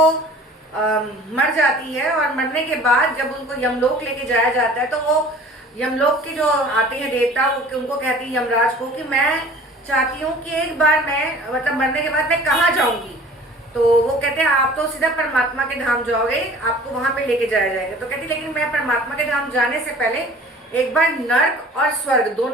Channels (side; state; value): both; normal; correlation 0.46